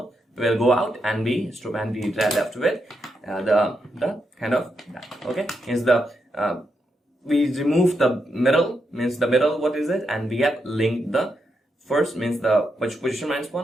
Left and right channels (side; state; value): both; normal; correlation 0.83